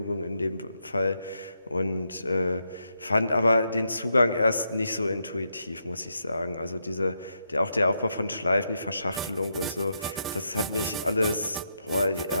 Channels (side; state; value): both; inverted; correlation -0.81